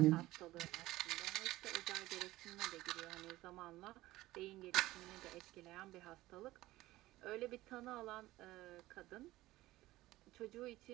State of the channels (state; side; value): quieter; left; 17.3 dB